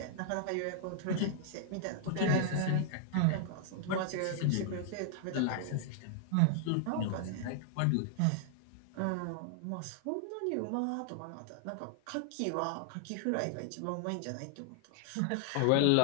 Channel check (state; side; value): different; both; correlation -0.01